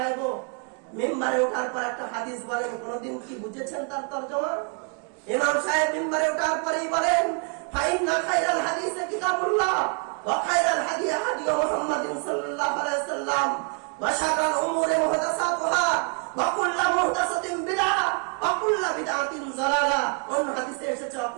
মিম্বারে ওঠার পর একটা হাদিস বলেন, কোনদিন কি বুঝেছেন তার তরজমা? ইমাম সাহেব মিম্বারে ওঠার পরেই বলেন, ফাইন্না খায়রাল হাদিসে কিতাবুল্লাহ ওয়া খায়রাল হাদি হাদি মুহাম্মাদিন সাল্লাল্লাহু আলাইহি ওয়াসাল্লাম ওয়া শাররাল উমুরি মুহদাসাতুহা ওয়া কুল্লু মুহদাসাতিন বিদআহ ওয়া কুল্লু বিদআতিন যালালা। অন্য হাদিসে এসেছে ওয়া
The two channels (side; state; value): left; quieter; 35.6 dB